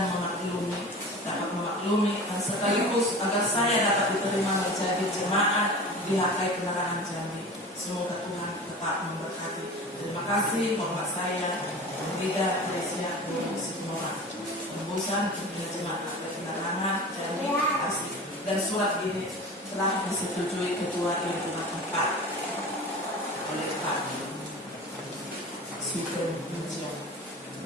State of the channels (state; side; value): normal; both; correlation 0.35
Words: dapat memaklumi dan sekaligus agar saya dapat diterima menjadi jemaat di HKI Penerangan Jambi. Semoga Tuhan tetap memberkati. Terima kasih. Hormat saya Pendeta Teresia Sihoran, Tembusan Jemaat HKI Penerangan Jambi. Terima kasih. Dan surat ini telah disetujui Ketua Lingkungan 4 oleh Pak Sugeng Pujian.